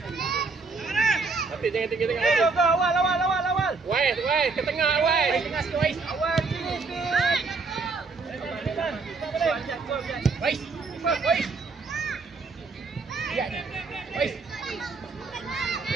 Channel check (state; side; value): quieter; left; 4.2 dB